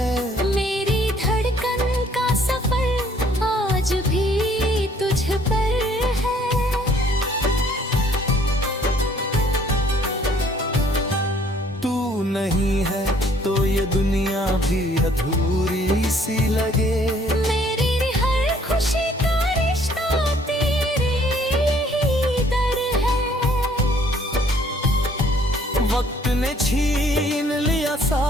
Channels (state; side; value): normal; both; correlation 0.60